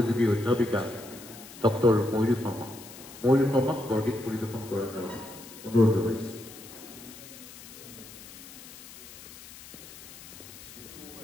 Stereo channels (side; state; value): left; noise; hiss, 16 dB below the sound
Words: অধ্যাপিকা ডক্টৰ ময়ূৰী শৰ্মা। ময়ূৰী শৰ্মাক বৰগীত পৰিৱেশন কৰাৰ কাৰণে অনুৰোধ জনাইছোঁ।